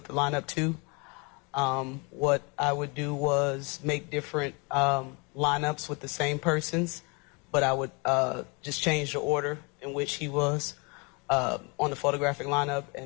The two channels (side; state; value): right; quieter; 30.4 dB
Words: the lineup 2. What I would do was make different lineups with the same persons, but I would just change the order in which he was on the photographic lineup,